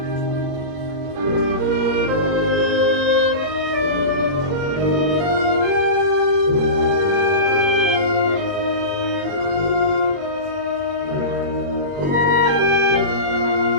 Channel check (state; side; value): late; left; 21 ms